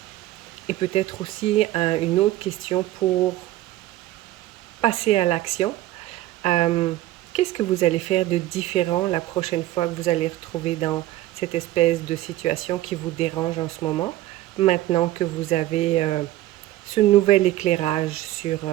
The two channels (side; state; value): left; quieter; 15.2 dB